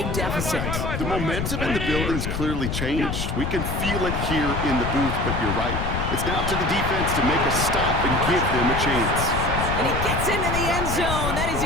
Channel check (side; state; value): left; noise; rumble, 2 dB below the sound